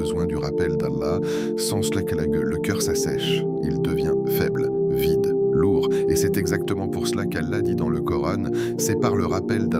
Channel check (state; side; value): identical; both; correlation 1.00